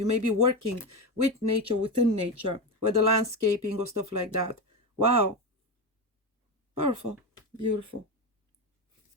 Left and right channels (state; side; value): normal; both; correlation 0.16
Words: may be working with nature, within nature, whether landscaping or stuff like that. Wow. Powerful. Beautiful.